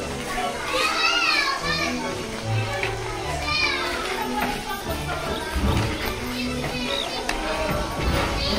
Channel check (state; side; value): identical; both; correlation 1.00